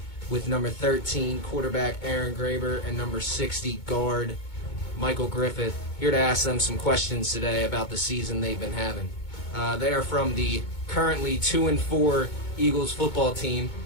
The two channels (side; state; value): right; late; 2.2 ms